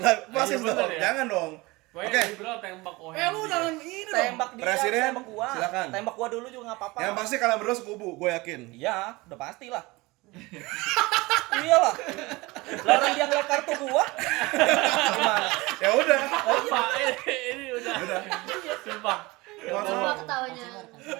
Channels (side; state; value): left; quieter; 22.6 dB